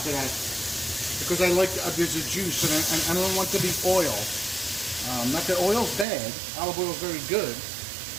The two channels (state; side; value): drops out; left; at 6.1 s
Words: to that because I like, there's a juice and I don't want to be oil. Not that oil's bad, olive oil is very good,